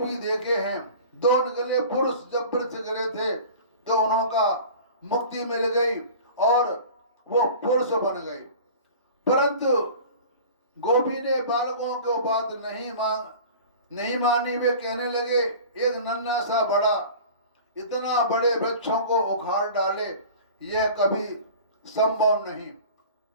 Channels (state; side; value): inverted; both; correlation -0.40